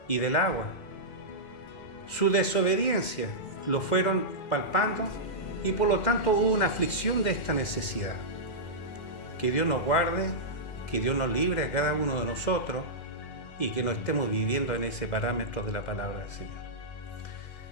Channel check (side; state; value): right; late; 2.1 ms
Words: y del agua. Su desobediencia lo fueron palpando y por lo tanto hubo una aflicción de esta necesidad. Que Dios nos guarde, que Dios nos libre a cada uno de nosotros y que no estemos viviendo en ese parámetro de la palabra del Señor.